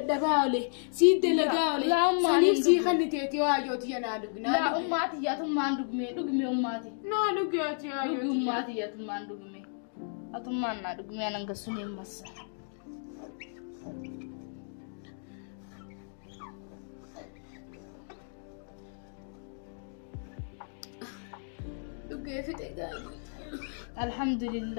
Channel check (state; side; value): silent; right; digital silence